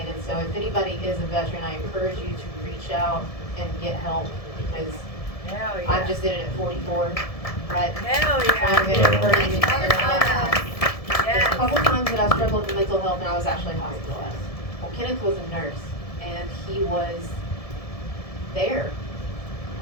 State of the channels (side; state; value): right; late; 1.7 ms